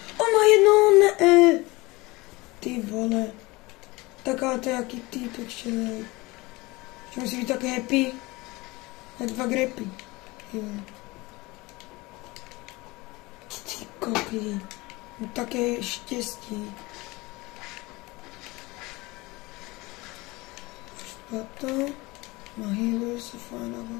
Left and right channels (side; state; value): right; quieter; 22.5 dB